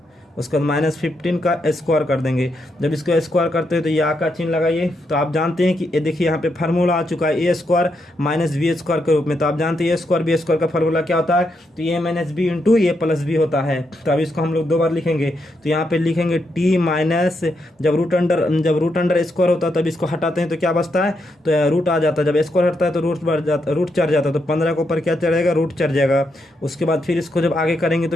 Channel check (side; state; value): both; normal; correlation 0.81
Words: उसके बाद -15 का स्क्वायर कर देंगे। जब इसको स्क्वायर करते हैं तो या का चिन्ह लगाइए। तो आप जानते हैं कि ये देखिए यहाँ पे फार्मूला आ चुका है a² -b² के रूप में। तो आप जानते हैं a² b² का फार्मूला क्या होता है, तो a - b इंटू a+b होता है। तो अब इसको हम लोग 2 बार लिखेंगे। तो यहाँ पे लिखेंगे t माइनस, जब रूट अंडर स्क्वायर होता है तब इसको हटाते हैं तो क्या बचता है, तो रूट आ जाता है। जब स्क्वायर हटता है तो रूट चढ़ जाता है। तो 15 के ऊपर क्या चढ़ेगा, रूट चढ़ जाएगा। उसके बाद फिर इसको जब आगे करेंगे